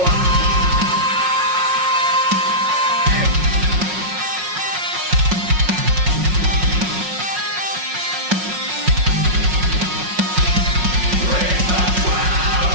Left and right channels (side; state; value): left; late; 5.5 ms